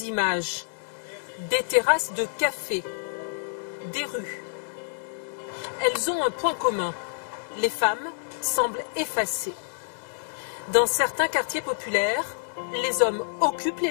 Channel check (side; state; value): right; silent; digital silence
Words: images. Des terrasses de café, des rues. Elles ont un point commun. Les femmes semblent effacées. Dans certains quartiers populaires, les hommes occupent les